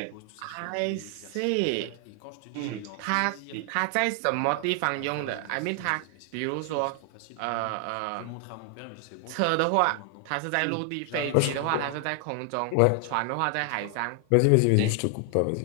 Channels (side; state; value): both; different; correlation 0.00